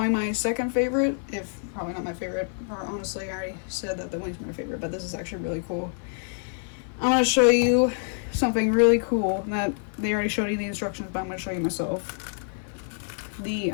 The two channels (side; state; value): right; silent; digital silence